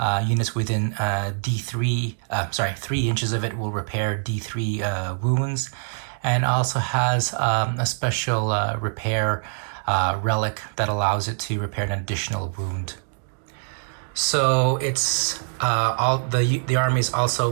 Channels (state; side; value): silent; left; digital silence